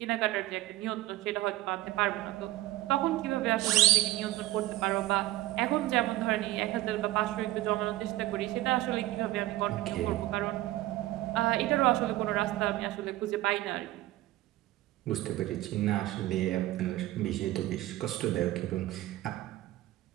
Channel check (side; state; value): left; quieter; 16.5 dB